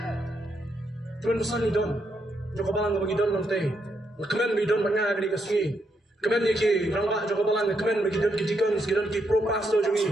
Tuan pesan idon. Joko balang bagi don nanti. Kemen bagi don banyak di kasih. Kemen iki rangka joko balang kemen bagi don kijikan sekitar ki pro pasto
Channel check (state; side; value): normal; both; correlation 0.79